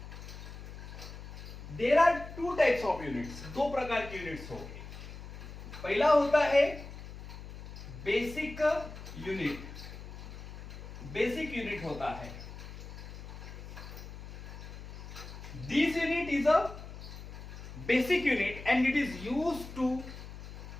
There are 2 types of units. 2 प्रकार की यूनिट्स हो गई. पहला होता है बेसिक यूनिट. बेसिक यूनिट होता है. This unit is a basic unit and it is used to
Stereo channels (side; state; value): left; noise; hum, 12 dB below the sound